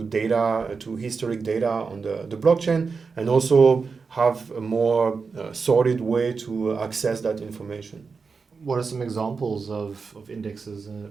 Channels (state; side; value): quieter; left; 4.9 dB